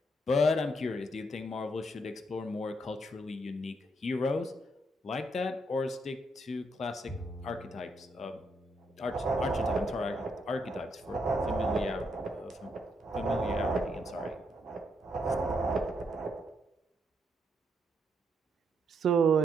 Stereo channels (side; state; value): both; normal; correlation 0.76